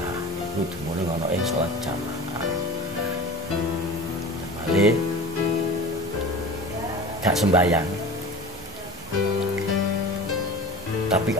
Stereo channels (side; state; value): both; normal; correlation 0.36